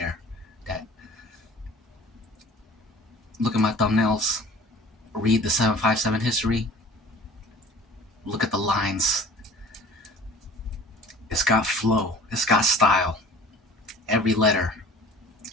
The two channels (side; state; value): both; normal; correlation 0.46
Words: That look at my thumbnails, read the 757 history, look at the lines. It's got flow, it's got style. Every letter